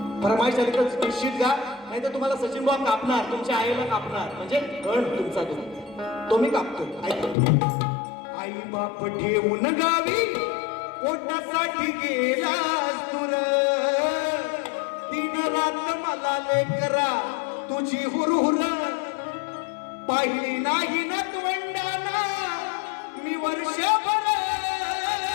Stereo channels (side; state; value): right; drops out; at 7.4 s